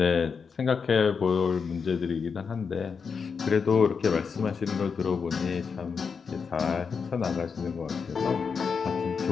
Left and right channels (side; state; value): right; quieter; 5.8 dB